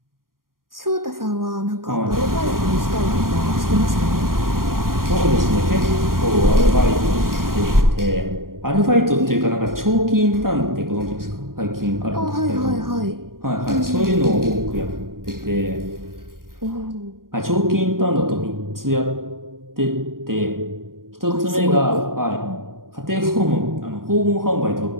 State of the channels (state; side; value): late; left; 0.91 ms